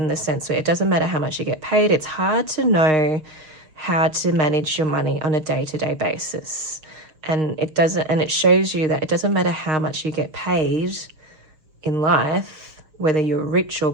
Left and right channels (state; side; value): late; left; 6.5 ms